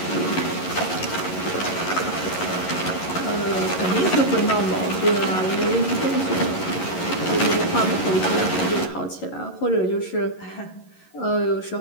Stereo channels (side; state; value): right; late; 11 ms